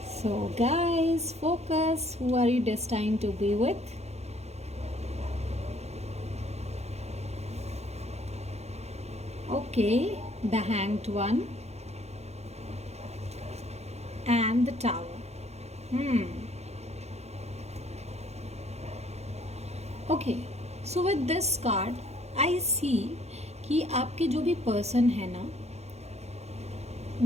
So guys, focus. Who are you destined to be with? Okay, the Hanged One and the Tower. Okay, so with this card I see कि आपके जो भी पर्सन है ना,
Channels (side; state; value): left; late; 0.31 ms